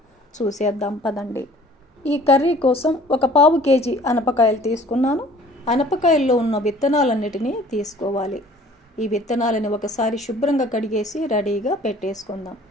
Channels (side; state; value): both; normal; correlation 0.52